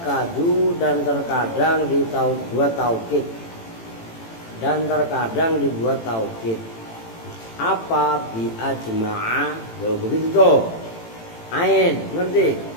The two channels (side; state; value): right; late; 18 ms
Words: dan terkadang dibuat taukid. Dan terkadang dibuat taukid. Apa bi ajma'a? Loh, begitu tuh. Ain, ngerti?